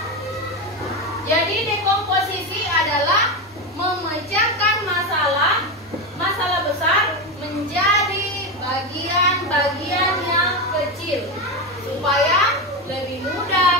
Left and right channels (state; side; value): normal; both; correlation 0.15